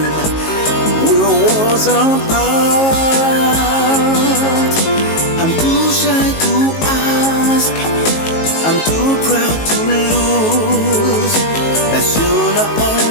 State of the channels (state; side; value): late; right; 19 ms